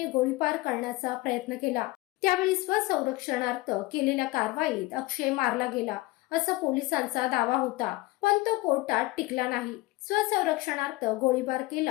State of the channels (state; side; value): quieter; right; 20.7 dB